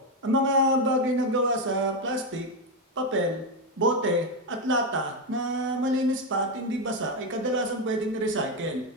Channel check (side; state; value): both; normal; correlation 0.08